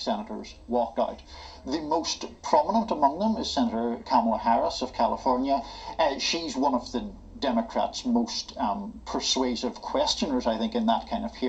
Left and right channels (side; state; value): both; identical; correlation 1.00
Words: walked out. The most prominent among them is Senator Kamala Harris of California. She's one of the Democrats' most persuasive questioners, I think, in that kind of